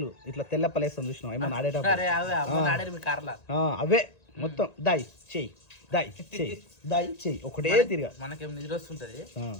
ఇట్లా తెల్లప్పలేస్తాం చూసినాం ఏమన్నా ఆడేటప్పుడు, అవే మొత్తం దాయి చెయ్యి దాయి చెయ్యి దాయి చెయ్యి ఒకటే తిరిగా. మనకేం నిద్ర వస్తుంటది,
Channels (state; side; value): late; right; 1.9 ms